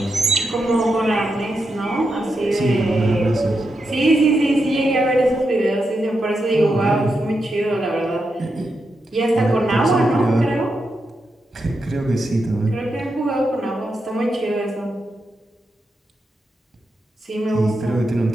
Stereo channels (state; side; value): normal; both; correlation 0.85